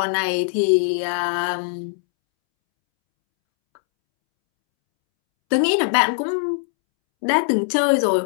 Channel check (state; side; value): silent; right; 65 dB below the other